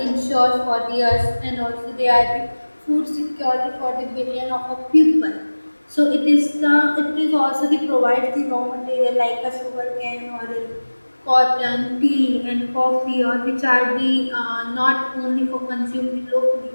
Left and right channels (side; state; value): both; inverted; correlation -1.00